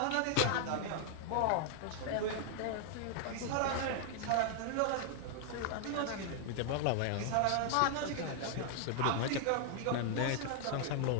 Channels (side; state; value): both; different; correlation 0.00